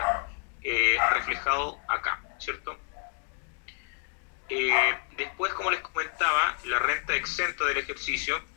reflejado acá, ¿cierto? Después, como les comentaba, la renta exenta del ejercicio,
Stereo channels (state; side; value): quieter; right; 38.8 dB